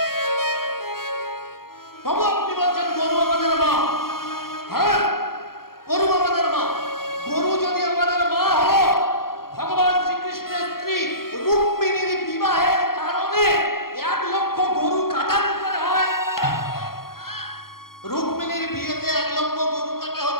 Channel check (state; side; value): late; right; 0.93 ms